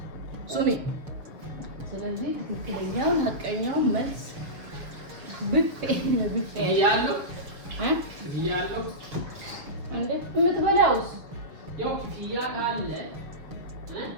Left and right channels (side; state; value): left; late; 6.6 ms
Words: ሱሚ ስለዚህ ትክክለኛውን ሀቀኛው መልስ ብፌ ያለው ያለው እንዴ የምትበላውስ ያው ክፍያ ካለ